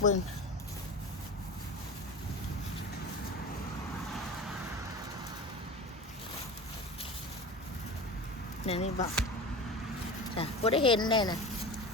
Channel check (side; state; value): both; normal; correlation 0.31